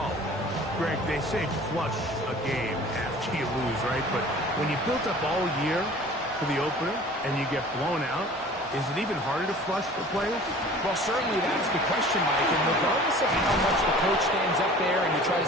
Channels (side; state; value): both; normal; correlation 0.45